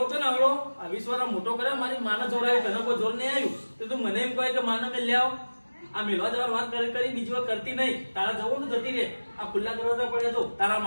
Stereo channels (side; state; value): both; inverted; correlation -1.00